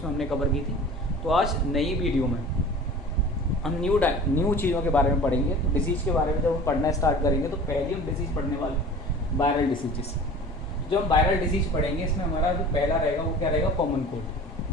हमने कवर की थी। तो आज नई वीडियो में हम न्यू चीज़ों के बारे में पढ़ेंगे। तो डिसीज़ के बारे में जब हम पढ़ना स्टार्ट करेंगे तो पहले हम डिसीज़ पढ़ने वाले वायरल डिसीजेस। जो हम वायरल डिसीज पढ़ेंगे, इसमें हमारा जो पहला रहेगा वो क्या रहेगा, कॉमन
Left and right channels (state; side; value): normal; both; correlation 0.41